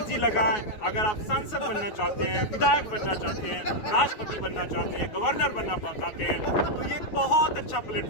लगाएं। अगर आप सांसद बनना चाहते हैं, विधायक बनना चाहते हैं, राष्ट्रपति बनना चाहते हैं, गवर्नर बनना चाहते हैं, तो ये एक बहुत अच्छा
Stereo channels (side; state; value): right; late; 9.4 ms